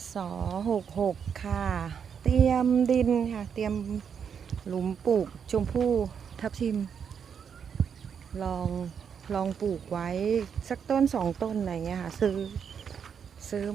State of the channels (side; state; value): left; quieter; 7.2 dB